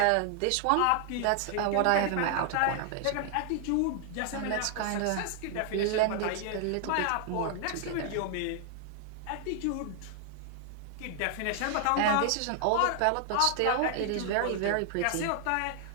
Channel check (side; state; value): both; different; correlation 0.00